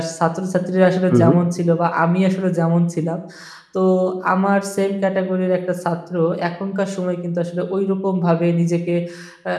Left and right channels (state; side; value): identical; both; correlation 1.00